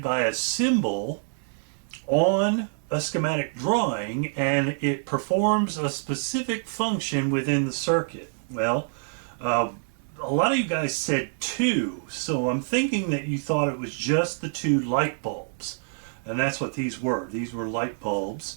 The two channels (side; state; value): left; silent; digital silence